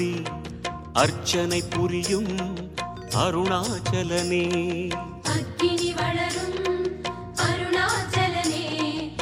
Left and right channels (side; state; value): both; identical; correlation 1.00